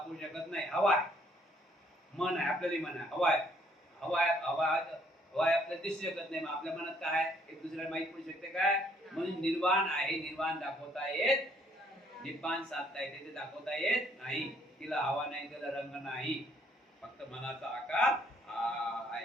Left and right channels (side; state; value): both; normal; correlation 0.65